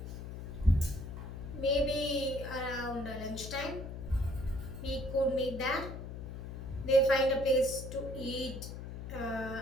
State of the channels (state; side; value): noise; left; hum, 8 dB below the sound